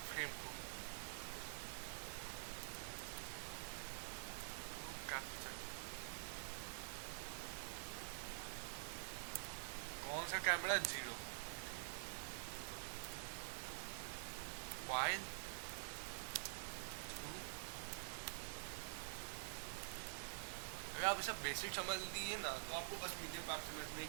फ्रेम को कैप्चर। कौन सा कैमरा, 0, वाइल अगर आप इसका बेसिक समझ लिए ना तो आपको बस मीडिया पाइप समझने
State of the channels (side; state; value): left; silent; digital silence